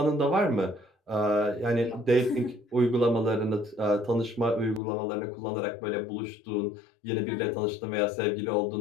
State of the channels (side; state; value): right; drops out; at 4.8 s